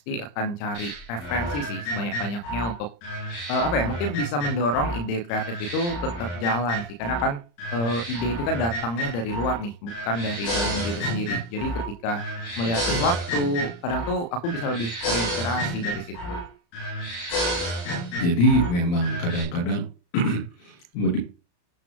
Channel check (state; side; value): late; right; 35 ms